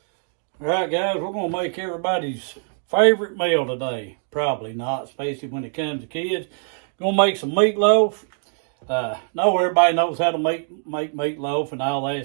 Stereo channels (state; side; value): silent; left; 61 dB below the other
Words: right, guys, we're going to make everybody's favorite meal today. Probably not, especially when it comes to kids. Going to make some meatloaf. Know everybody knows how to make meatloaf and all